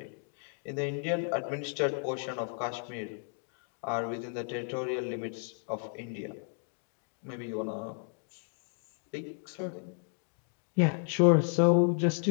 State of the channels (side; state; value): right; silent; 56 dB below the other